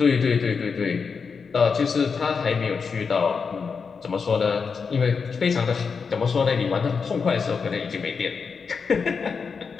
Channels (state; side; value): quieter; right; 5.5 dB